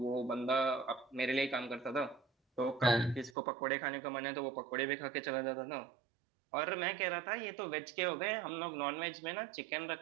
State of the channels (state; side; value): drops out; left; at 3.3 s